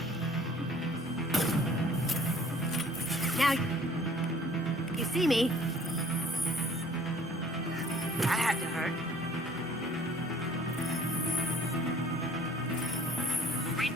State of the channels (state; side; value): normal; both; correlation 0.54